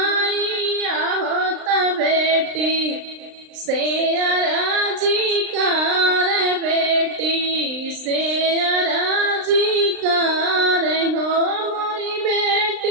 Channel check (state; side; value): late; left; 39 ms